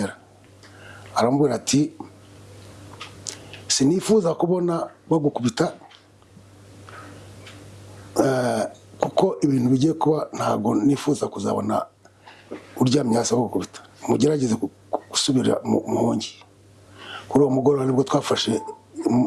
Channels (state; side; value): identical; both; correlation 1.00